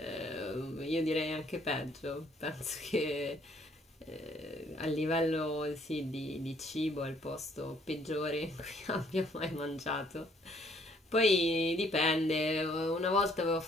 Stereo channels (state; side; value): normal; both; correlation 0.64